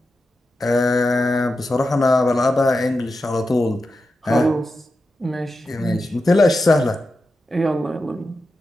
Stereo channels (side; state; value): both; normal; correlation 0.90